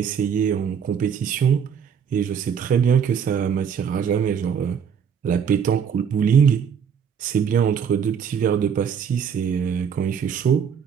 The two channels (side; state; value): left; quieter; 7.4 dB